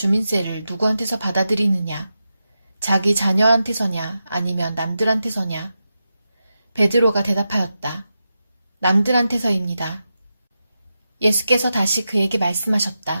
누구한테서 받아들이느냐? 자기 자녀한테서냐 아니면 남들한테서냐? 베드로가 대답하였다. 남들한테서입니다. 예수께서 다시 그에게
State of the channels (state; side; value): inverted; both; correlation -0.89